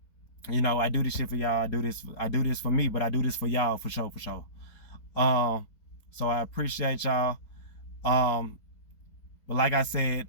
know, I do this shit for y'all. I do this for me, but I do this for y'all for sure. So I appreciate y'all. But like I said,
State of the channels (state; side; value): late; right; 4.3 ms